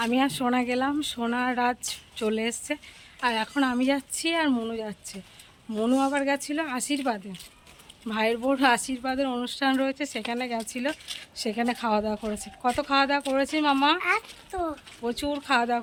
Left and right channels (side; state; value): both; identical; correlation 1.00